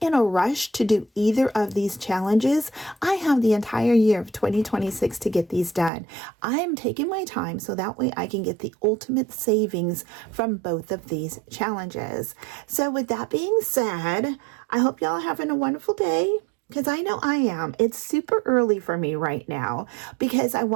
a rush to do either of these challenges. I have the entire year of 2026 to get these done. I'm taking my time so that way I can get the ultimate savings from both of these challenges. So with that being said, I hope y'all are having a wonderful day, because I know I am. It's super early for me right now because I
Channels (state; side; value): drops out; left; at 5.9 s